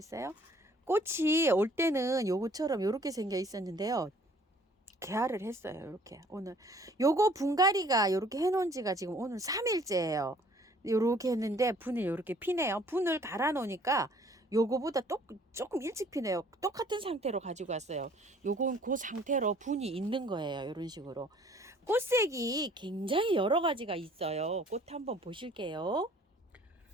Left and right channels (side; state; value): both; normal; correlation 0.57